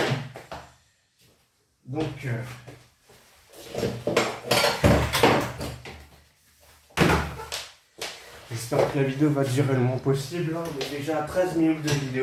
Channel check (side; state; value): both; identical; correlation 1.00